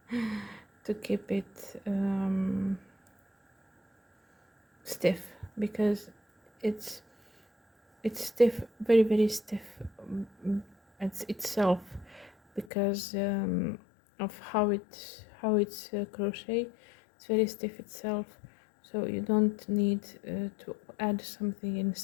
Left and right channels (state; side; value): drops out; right; at 12.7 s